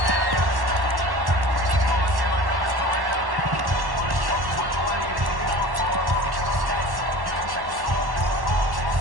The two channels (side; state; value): left; late; 1.1 ms